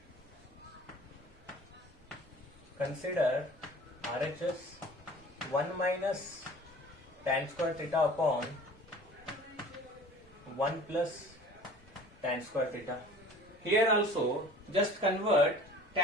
consider RHS 1 minus tan square theta upon 1 plus tan square theta. Here also just convert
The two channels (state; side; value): normal; both; correlation 0.45